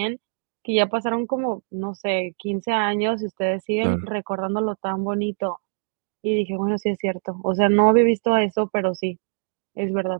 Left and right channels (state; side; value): silent; left; digital silence